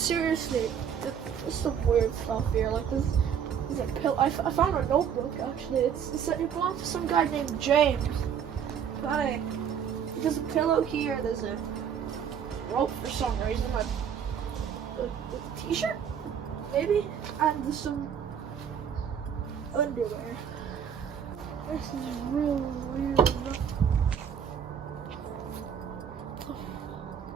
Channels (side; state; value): left; quieter; 8.1 dB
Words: there's some weird stuff here. Like this is a pill. I found a notebook actually. It belongs to some guy named James. But there's a pillow here. There's a rope for some reason. Like a t-shirt, maybe, and there's some underwear. This is real weird.